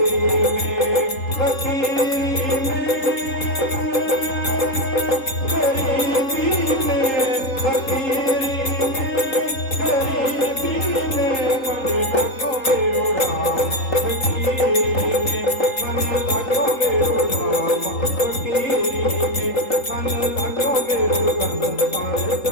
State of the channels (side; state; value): right; late; 3.8 ms